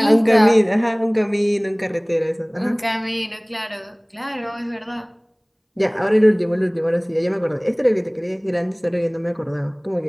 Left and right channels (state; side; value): identical; both; correlation 1.00